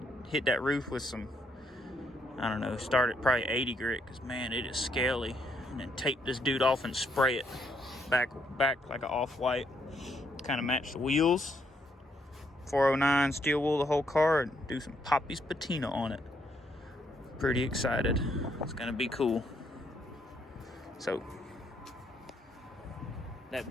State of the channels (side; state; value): both; normal; correlation 0.73